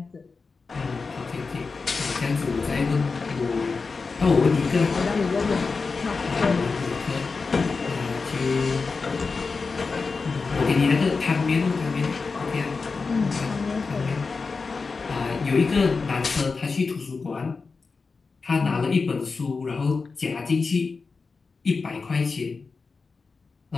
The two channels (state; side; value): quieter; right; 4.5 dB